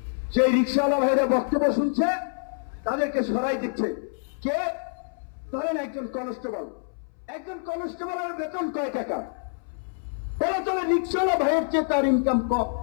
যে রিক্সাওয়ালা ভাইরা বক্তব্য শুনছে তাদেরকে সরাই দিচ্ছে। কে? ধরেন একজন কনস্টেবলের বেতন কয় টাকা? এরা চলে রিক্সাওয়ালা ভাইয়ের চেয়ে তার ইনকাম কম।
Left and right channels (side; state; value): right; silent; 61 dB below the other